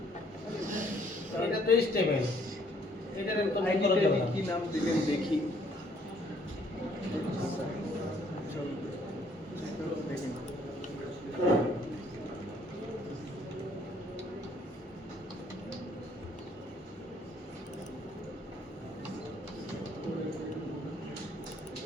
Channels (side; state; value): both; normal; correlation 0.64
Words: এটা তো স্টেবল, এটার একদম করা যাবে না। কি নাম দিলেন দেখি। চলো দেখি।